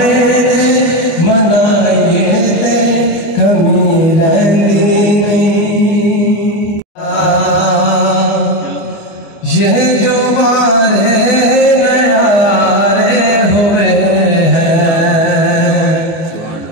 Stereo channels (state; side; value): late; right; 24 ms